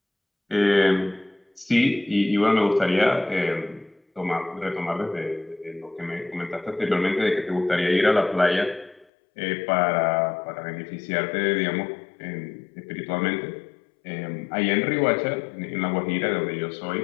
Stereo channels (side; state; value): right; drops out; at 9.1 s